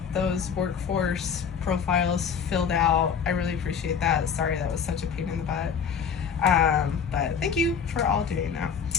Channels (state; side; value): quieter; right; 6.9 dB